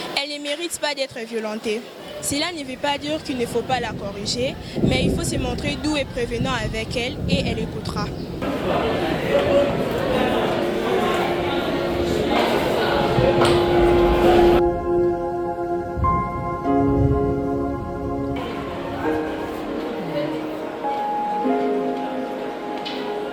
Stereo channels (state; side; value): identical; both; correlation 1.00